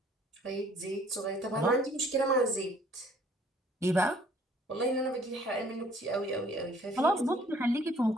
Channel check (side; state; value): both; normal; correlation 0.58